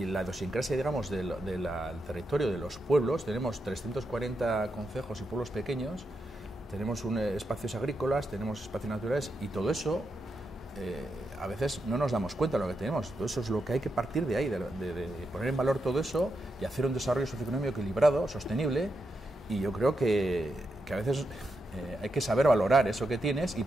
la idiosincrasia, digamos, del territorio de los pueblos. Tenemos 340 concejos y pueblos pequeños, tenemos espacios agrícolas, tenemos espacios naturales, y todo eso a veces no nos damos cuenta de lo que tenemos. Todo eso es lo que hay que partir de ahí, de poner en valor todo eso y hacer un desarrollo socioeconómico equilibrado, sostenible, y yo creo que a veces hay que saber valorar eso que tienes y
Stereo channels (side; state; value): both; normal; correlation 0.85